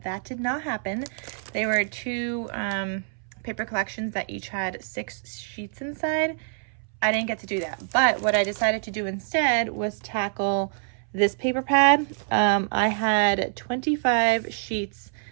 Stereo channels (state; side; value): silent; left; 61 dB below the other